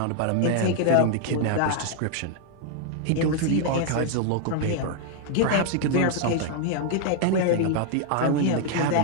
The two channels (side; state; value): both; different; correlation 0.00